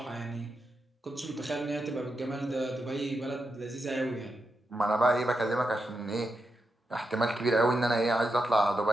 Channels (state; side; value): normal; both; correlation 0.86